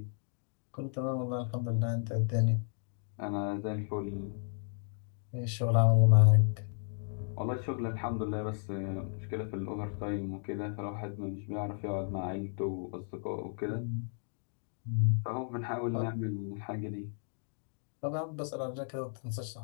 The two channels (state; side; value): silent; right; digital silence